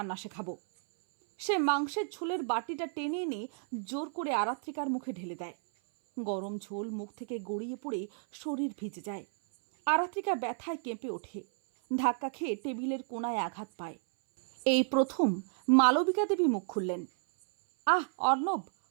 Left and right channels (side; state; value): left; silent; 56 dB below the other